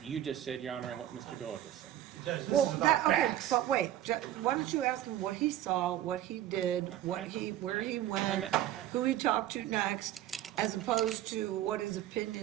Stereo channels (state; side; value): quieter; left; 12.7 dB